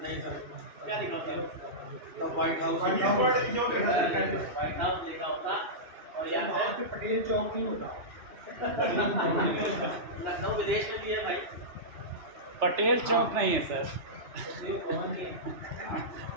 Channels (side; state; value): left; late; 3.3 ms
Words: सर क्या लिखा होता है तो व्हाइट हाउस व्हाइट हाउस लिखा होता और यहाँ पे पटेल चौक नहीं होता लखनऊ विदेश में भी है भाई पटेल चौक नहीं है सर